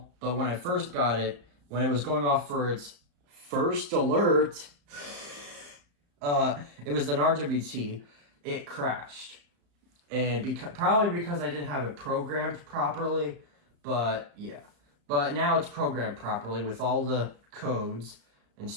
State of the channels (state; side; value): late; left; 35 ms